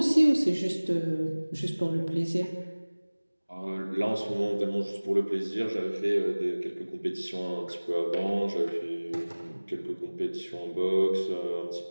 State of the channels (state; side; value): inverted; both; correlation -1.00